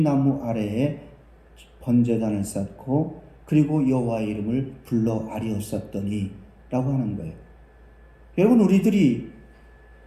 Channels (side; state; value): both; identical; correlation 1.00